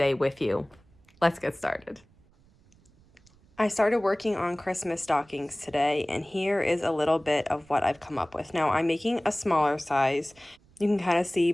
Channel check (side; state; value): right; noise; rumble, 30 dB below the sound